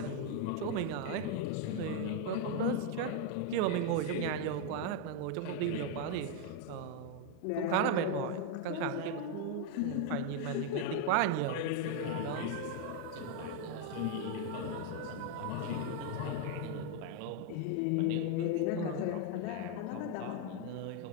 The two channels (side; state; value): both; different; correlation 0.01